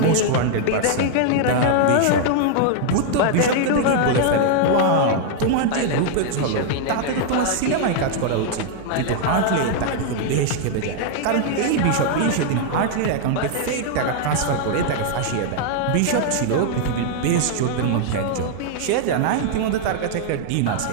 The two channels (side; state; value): both; different; correlation -0.01